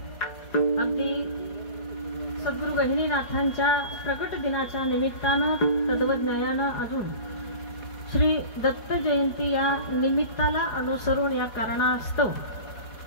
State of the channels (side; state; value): right; late; 4.8 ms